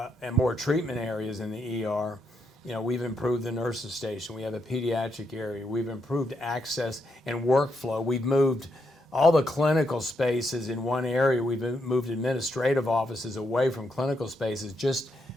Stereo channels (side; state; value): both; normal; correlation 0.79